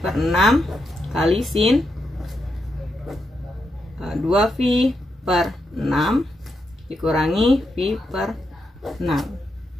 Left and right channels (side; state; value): both; normal; correlation 0.83